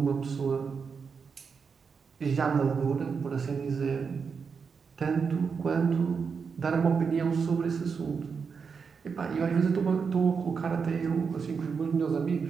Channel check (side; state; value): left; quieter; 5.7 dB